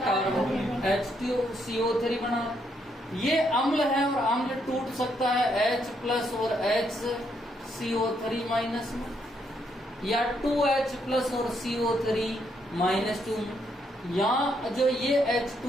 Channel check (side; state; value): both; normal; correlation 0.75